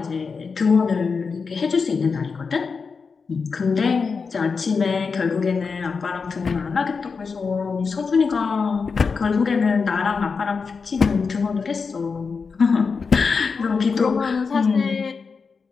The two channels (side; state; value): right; quieter; 5.1 dB